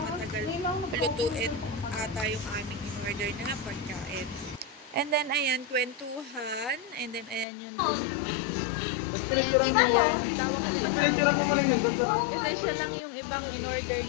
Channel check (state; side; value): drops out; right; at 7.5 s